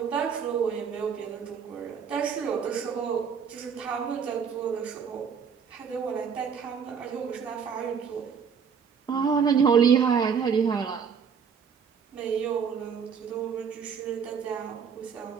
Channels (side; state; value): left; quieter; 6.7 dB